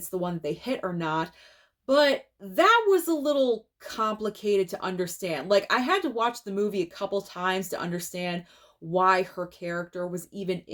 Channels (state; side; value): identical; both; correlation 1.00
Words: the one that they hit or not, but that was a little complicated to understand. Like, I had to watch the movie a couple times to understand why her character was even